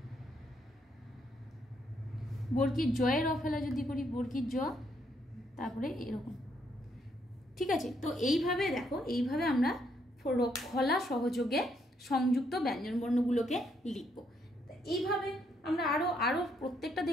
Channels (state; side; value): normal; both; correlation 0.73